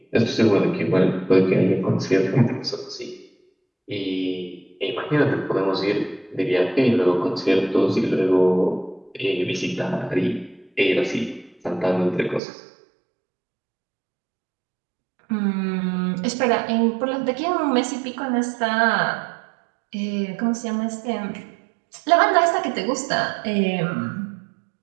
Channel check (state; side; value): drops out; left; at 12.4 s